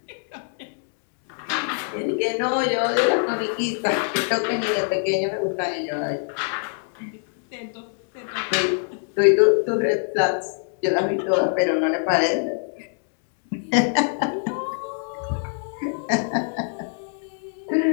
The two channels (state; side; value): silent; right; 62 dB below the other